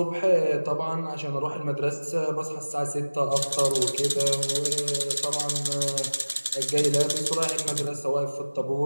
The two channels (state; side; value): inverted; both; correlation -1.00